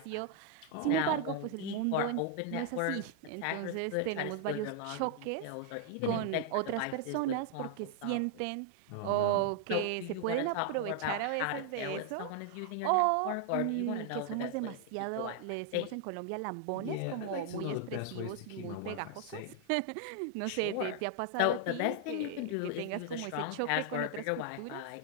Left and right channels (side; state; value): both; different; correlation 0.00